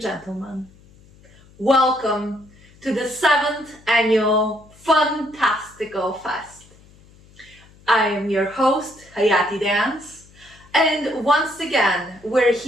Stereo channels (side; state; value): left; noise; hum, 26 dB below the sound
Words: Welcome to the 7th Annual FUNtastical Fest. I am your host, Hayatidance, and once again, we're